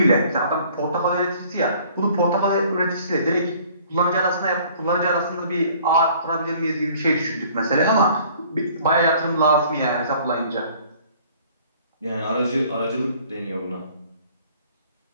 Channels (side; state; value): both; inverted; correlation -0.55